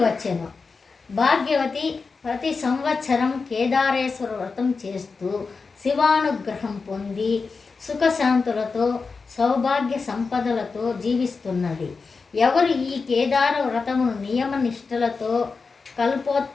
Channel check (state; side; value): quieter; right; 4.6 dB